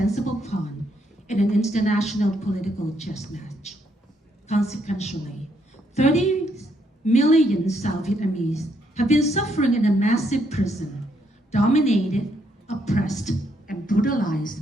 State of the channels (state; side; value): normal; both; correlation 0.74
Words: pawn in an international political chess match. Consequently, 30 million South Vietnamese have been suffering in a massive prison, dominated, oppressed, and brutalized